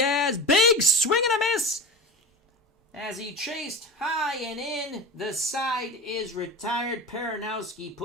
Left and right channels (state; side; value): normal; both; correlation 0.30